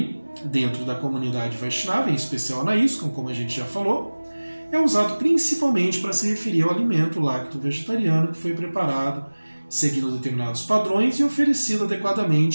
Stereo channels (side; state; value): both; inverted; correlation -1.00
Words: dentro da comunidade Vaishnava, em especial na ISKCON, como a gente já falou, é usado principalmente para se referir ao alimento lacto-vegetariano que foi preparado seguindo determinados padrões e oferecido